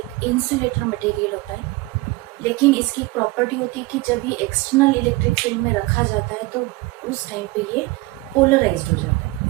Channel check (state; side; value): quieter; left; 21.7 dB